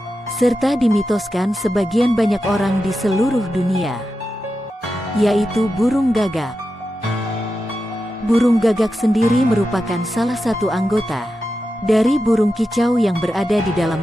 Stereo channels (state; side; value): normal; both; correlation 0.90